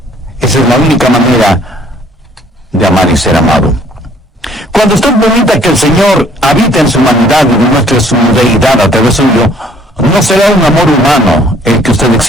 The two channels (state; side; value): normal; both; correlation 0.60